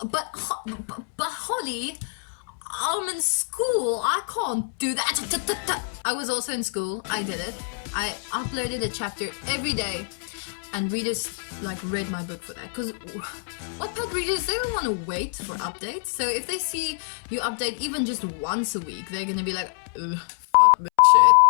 But Holly, I'm in school. I can't do that. I was also in school. I did it. I uploaded a chapter every day, and readers like read my book for that. Because Wattpad readers, they don't want to wait for updates. So if they see you update even just once a week, they're gonna be like, fuck this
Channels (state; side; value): silent; right; 61 dB below the other